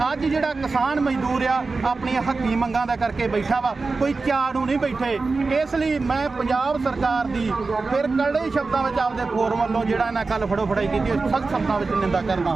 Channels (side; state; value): left; quieter; 4.0 dB